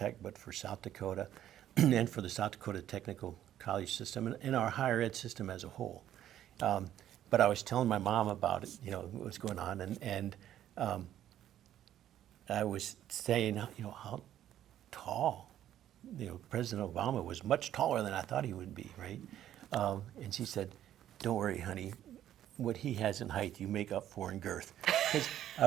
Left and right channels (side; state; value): left; quieter; 11.7 dB